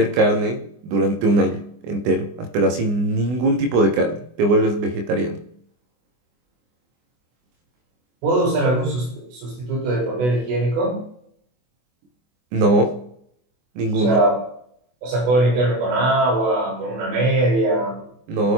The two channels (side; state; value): left; late; 24 ms